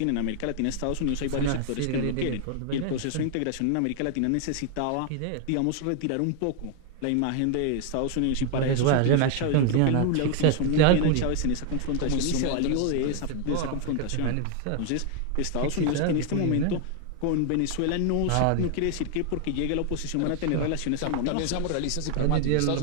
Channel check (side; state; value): both; different; correlation 0.00